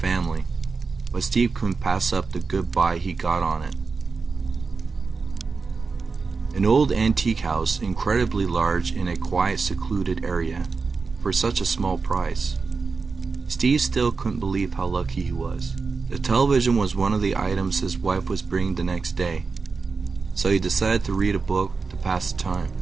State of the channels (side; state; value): left; quieter; 4.6 dB